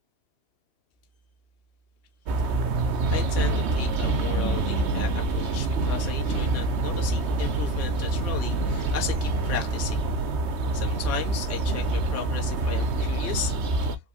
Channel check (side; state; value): left; late; 3.2 ms